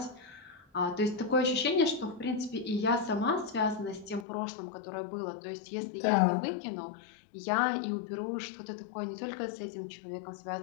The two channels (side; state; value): right; drops out; at 4.2 s